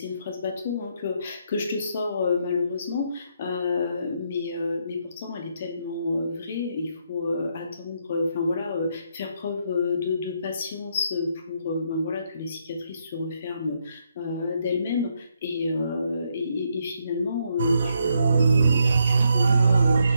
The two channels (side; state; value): both; inverted; correlation -0.76